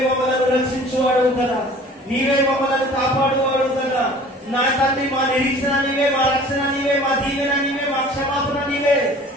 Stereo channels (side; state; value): both; normal; correlation 0.47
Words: మమ్మల్ని రక్షించువాడు కదా, నీవే మమ్మల్ని కాపాడువాడు కదా నా తండ్రి. మా నిరీక్షణ నీవే, మా రక్షణ నీవే, మా దీవెన నీవే, మా క్షమాపణ నీవే.